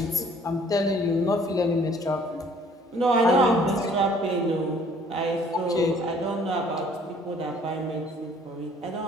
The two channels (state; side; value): normal; both; correlation 0.58